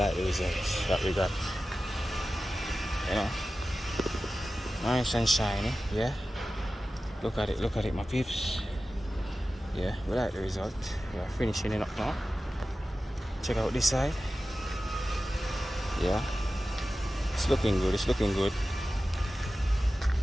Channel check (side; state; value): both; normal; correlation 0.95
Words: that we got. You know, nice and shiny. Yeah, look at it my peeps. Yeah, we like the result. We are finishing it up now. Check out this side. Yeah, it's looking good, the